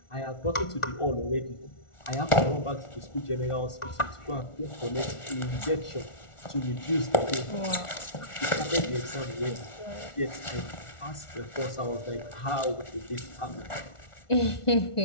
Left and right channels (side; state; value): right; late; 1.4 ms